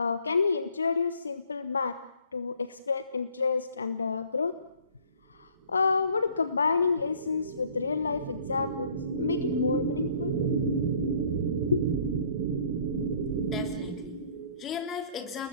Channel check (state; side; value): inverted; both; correlation -0.57